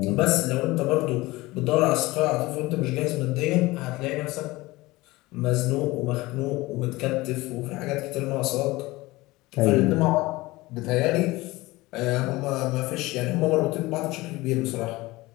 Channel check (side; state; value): right; quieter; 20.3 dB